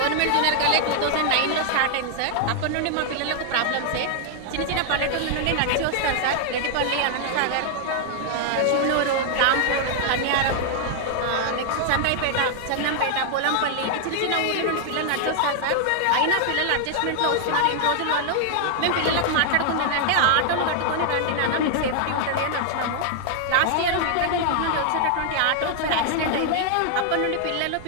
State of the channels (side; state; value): both; different; correlation 0.00